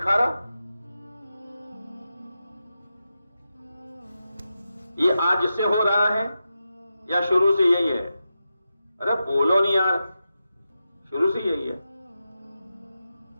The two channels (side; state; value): both; inverted; correlation -0.90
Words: یہ آج سے ہو رہا ہے یا شروع سے یہی ہے؟ ارے بولو نہیں یار، شروع سے یہی ہے۔